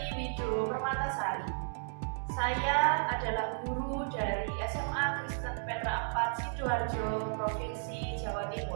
Wido Permatasari. Saya adalah guru dari SMA Kristen Petra 4 Sidoarjo, Provinsi Jawa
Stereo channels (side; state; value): left; silent; digital silence